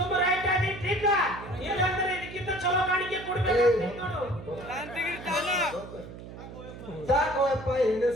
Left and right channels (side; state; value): right; noise; hum, 13 dB below the sound